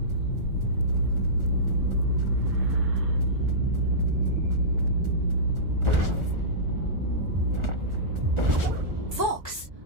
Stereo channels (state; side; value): late; left; 1.4 ms